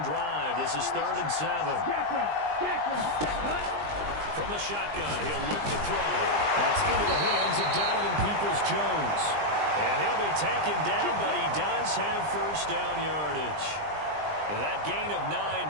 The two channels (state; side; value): late; left; 20 ms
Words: drive. This is 3rd and 7. From the shotgun, he'll look to throw. That's into the hands of Donovan Peoples-Jones. And he'll be taken down, but he does have first down yardage. And that gain of